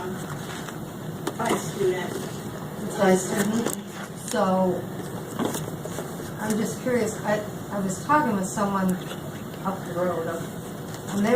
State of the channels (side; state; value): both; identical; correlation 1.00